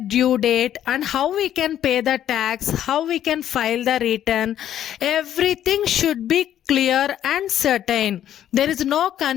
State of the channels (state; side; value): quieter; right; 11.0 dB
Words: due date and how we can pay the tax, how we can file the return. Everything should be clear and certain. There is no